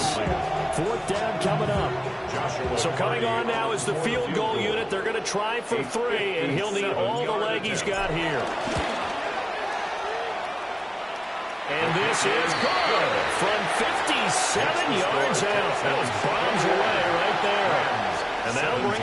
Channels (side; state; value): both; identical; correlation 1.00